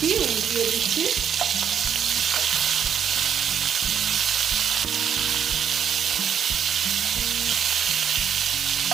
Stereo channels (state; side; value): quieter; left; 8.3 dB